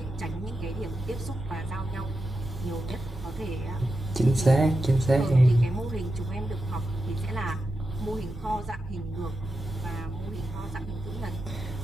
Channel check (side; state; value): both; normal; correlation 0.89